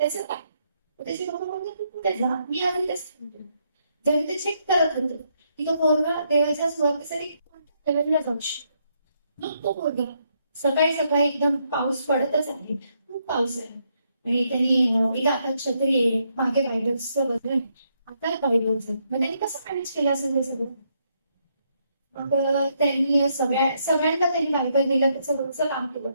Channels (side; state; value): both; inverted; correlation -0.76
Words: काय? त्याचे पप्पा बोलतो तू कुठे जा, मी आधी तेच सांगतो. जेव्हा ते चेक करत होतं की तो पोरगा देवाच्या सुवार्तेसाठी कोणत्या लेवलला जाऊ शकतो. मग तो पोरगा सकाळी एकदम पाऊस पडतच आहे, खूप पाऊस आहे आणि त्यांनी एका हातात छत्री आहे, मागे बायबल्सचं वजन, आता बायबल्स. मग त्यांनी कसं मॅनेज केलं असेल ते सगळं. मग त्यांनी सगळ्यांना त्यांनी बायबल दिलं, त्याचं रोजचं काम केलं.